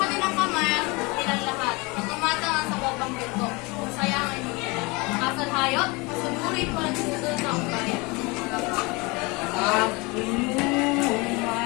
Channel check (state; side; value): quieter; right; 26.2 dB